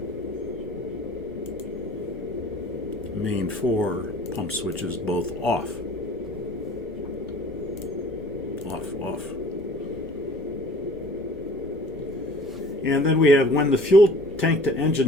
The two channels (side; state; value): both; normal; correlation 0.48